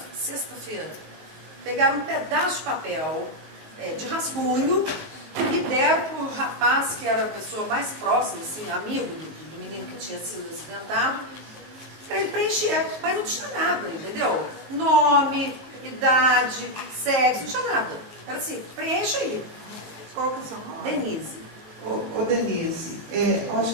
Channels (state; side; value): late; left; 19 ms